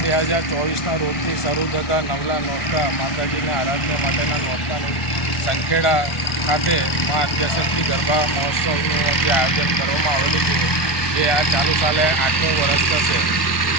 રોજથી શરૂ થતા નવલા નોરતા માતાજીના આરાધના માટેના નોરતાની સંખેડા ખાતે મા આદ્યશક્તિ ગરબા મહોત્સવનું જે આયોજન કરવામાં આવેલું છે, જે આ ચાલુ સાલે 8મું વર્ષ થશે.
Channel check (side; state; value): right; late; 1.2 ms